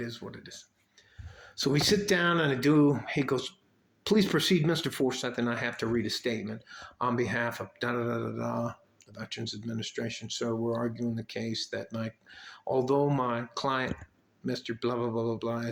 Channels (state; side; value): identical; both; correlation 1.00